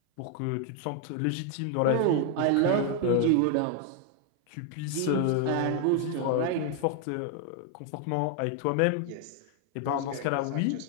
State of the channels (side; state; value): both; different; correlation 0.00